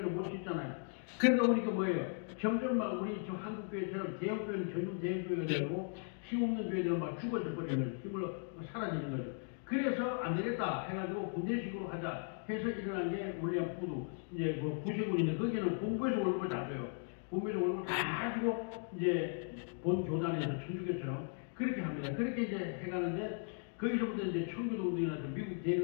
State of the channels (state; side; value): silent; right; 53 dB below the other